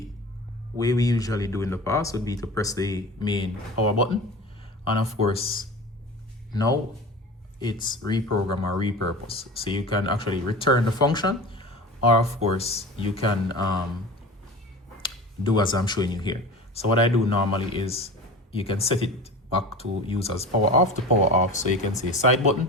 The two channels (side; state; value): both; normal; correlation 0.33